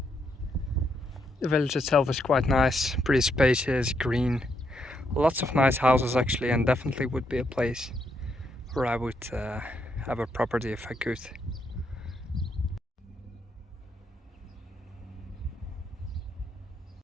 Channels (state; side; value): normal; both; correlation 0.78